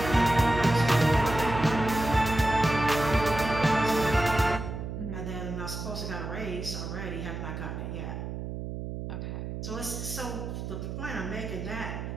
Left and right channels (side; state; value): right; noise; hum, 6 dB below the sound